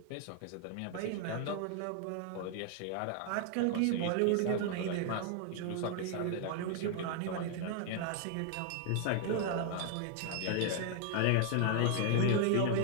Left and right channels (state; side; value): different; both; correlation 0.00